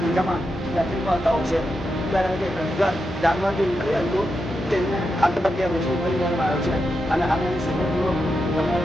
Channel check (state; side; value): normal; both; correlation 0.86